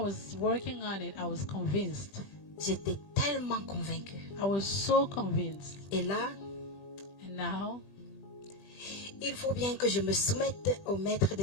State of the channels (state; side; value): late; right; 20 ms